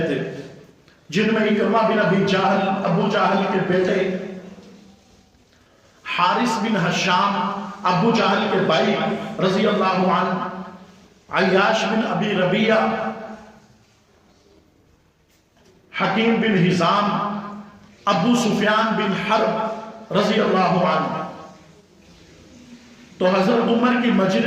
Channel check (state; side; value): identical; both; correlation 1.00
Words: تھے, جن میں اکرمہ بن ابی جہل, ابو جہل کے بیٹے, حارث بن ہشام, ابو جہل کے بھائی رضی اللہ عنہ, عیاش بن ابی ربیعہ, حکیم بن حزام, ابو سفیان بن حرب رضی اللہ عنہ. تو حضرت عمر کی